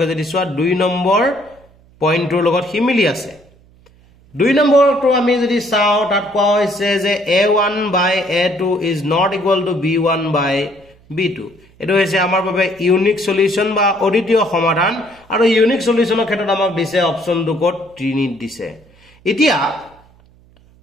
যদি চোৱা 2 নম্বৰ পইণ্টৰ লগত হিমিলি আছে 2 নম্বৰটো আমি যদি চাও তাত কোৱা হৈছে যে a1 by a2 is not equal to b1 by b2 এটো হৈছে আমাৰ বাবে ইউনিক সলিউশন বা অদ্বিতীয় সমাধান আৰু ইউনিক সলিউশনৰ ক্ষেত্ৰত আমাক দিছে অপচন দুকত ত্ৰিনিত দিছে এতিয়া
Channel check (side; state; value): right; noise; hum, 29 dB below the sound